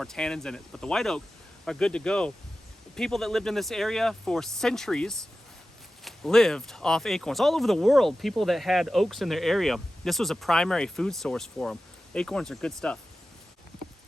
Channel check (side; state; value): both; normal; correlation 0.94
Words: tannins in it. But the white oak are good to go. People that lived in this area for centuries lived off acorns. All over the world, people that had oaks in their area, this was a primary food source for them. Acorns are good stuff.